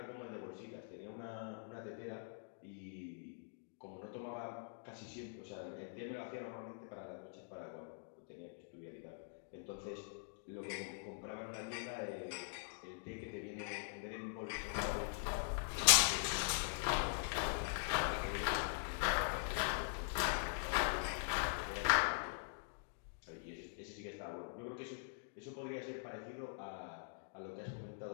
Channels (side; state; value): right; silent; digital silence